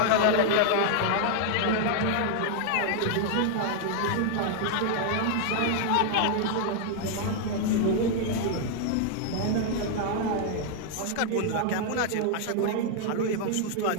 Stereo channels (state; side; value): different; both; correlation 0.00